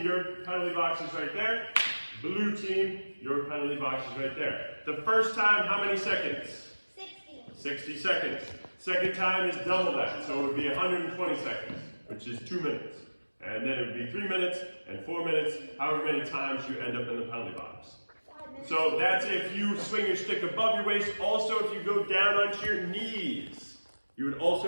your penalty box is right there. Blue team, your penalty box is right there. The first time, how many seconds? 60 seconds. Second time is double that, so it would be 120 seconds, which is 2 minutes. And then it would be 3 minutes and 4 minutes, however many times you end up in the penalty box. So that's if you swing your stick above your waist. Also, if you go down onto your knees, you would also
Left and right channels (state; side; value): inverted; both; correlation -1.00